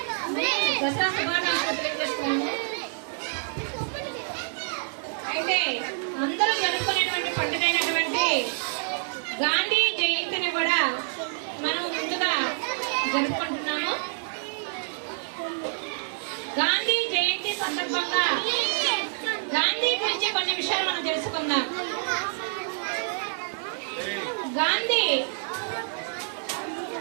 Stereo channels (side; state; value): left; silent; digital silence